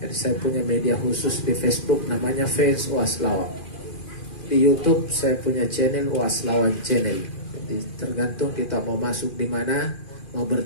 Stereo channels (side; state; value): right; late; 2.4 ms